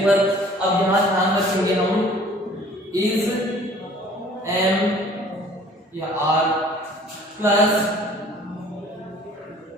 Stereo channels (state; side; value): normal; both; correlation 0.52